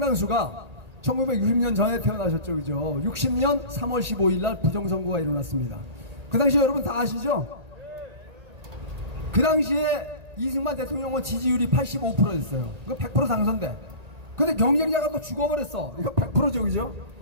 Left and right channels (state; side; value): late; left; 1.8 ms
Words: 1960년 전에 태어나셨죠, 그죠? 60년 3월 15일 날 부정선거가 일어났습니다. 그 당시에 여러분 다 아시죠? 그 당시에 이승만 대통령은 지지율이 85%였어요. 이거 100% 당선돼. 근데 경쟁자가 또 죽어버렸어. 이거 100%죠, 그죠?